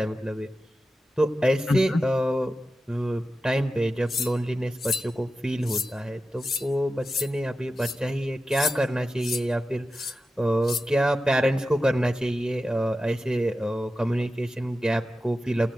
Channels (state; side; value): normal; both; correlation 0.92